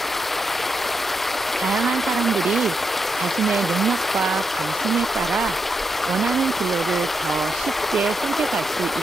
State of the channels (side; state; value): both; normal; correlation 0.84